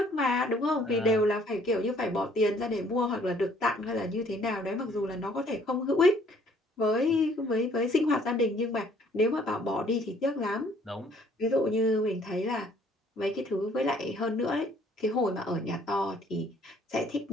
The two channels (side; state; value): both; normal; correlation 0.61